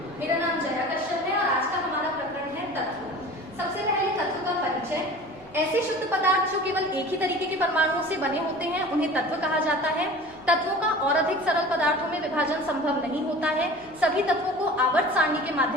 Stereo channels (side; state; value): both; normal; correlation 0.40